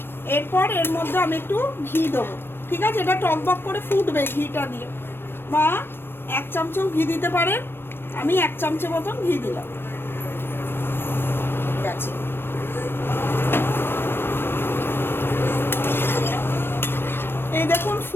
এরপর এর মধ্যে আমি একটু ঘি দেবো। ঠিক আছে, এটা টকবক করে ফুটবে ঘিটা দিয়ে, বা 1 চামচও ঘি দিতে পারেন, আমি 1 চামচের মতন ঘি দিলাম। ঠিক আছে, এই দেখুন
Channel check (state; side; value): late; right; 0.10 ms